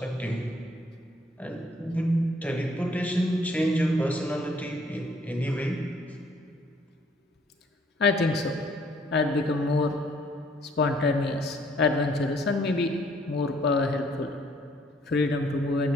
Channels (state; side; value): normal; both; correlation 0.64